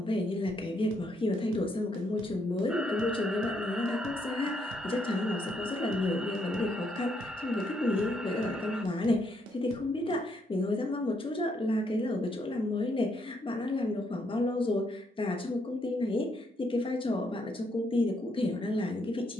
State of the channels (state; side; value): normal; both; correlation 0.75